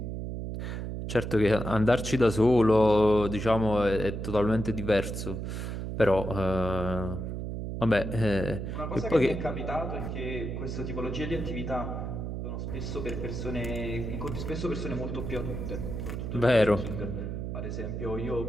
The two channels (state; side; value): noise; right; hum, 4 dB below the sound